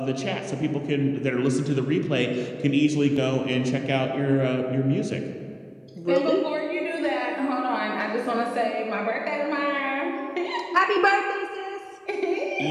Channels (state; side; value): identical; both; correlation 1.00